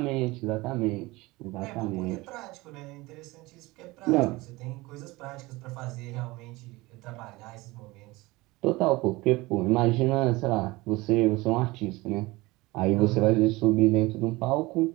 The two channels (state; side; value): quieter; left; 21.4 dB